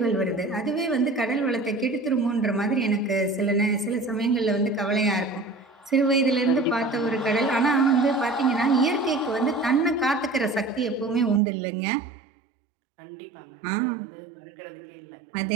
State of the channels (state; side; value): drops out; left; at 11.4 s